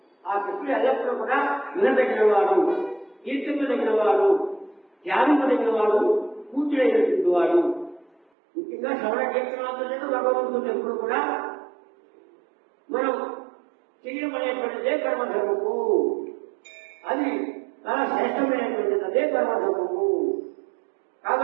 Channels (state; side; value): drops out; left; at 8.2 s